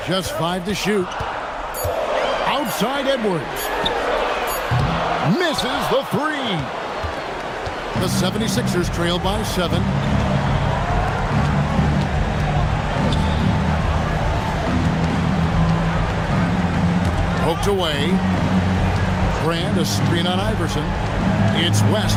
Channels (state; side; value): identical; both; correlation 1.00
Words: Just 5 to shoot. Outside Edwards. Misses the 3. The 76ers trail by 7. Poked away. Brand, a screen on Iverson. It's